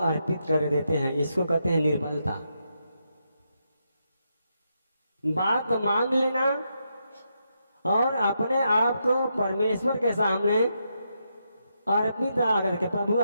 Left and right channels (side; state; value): both; inverted; correlation -0.82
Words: कर देते हैं। इसको कहते हैं निर्बलता। बात मान लेना और अपने आप को परमेश्वर के सामने अर्पित करके, प्रभु